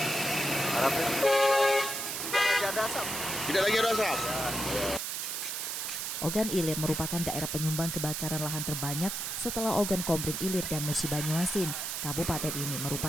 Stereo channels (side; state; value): right; noise; hiss, 3 dB below the sound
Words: Harapnya tidak lagi ada asap. Tidak lagi ada asap? Ogan Ilir merupakan daerah penyumbang kebakaran lahan terbanyak setelah Ogan Komering Ilir dan Musi Banyuasin. Kabupaten ini